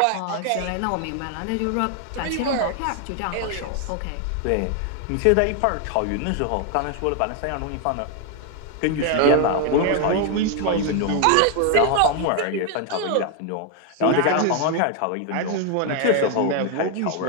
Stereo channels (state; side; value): different; both; correlation 0.01